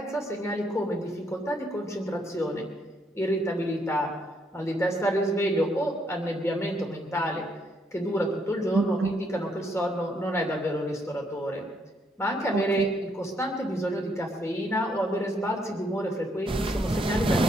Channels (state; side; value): normal; both; correlation 0.72